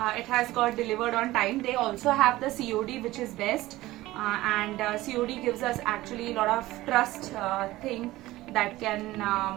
It has got delivered on time. They also have the COD, which is best, and COD gives us actually a lot of trust thing that can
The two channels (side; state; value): left; quieter; 17.3 dB